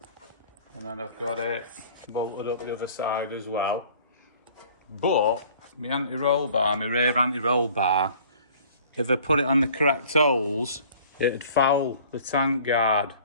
And then I've got it bolted up the other side as well. But my anti-roll bar, my rear anti-roll bar, if I put it on the correct holes, it'd foul the tank guard.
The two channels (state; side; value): inverted; both; correlation -0.51